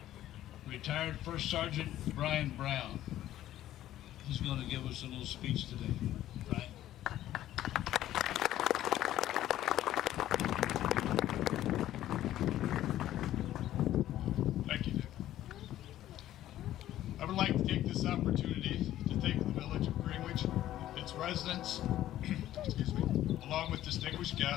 retired First Sergeant Bryan Brown. He's going to give us a little speech today. Bryan. Thank you, Dick. I would like to take this opportunity to thank the village of Greenwich, its residents, along with distinguished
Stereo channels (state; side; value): quieter; right; 13.2 dB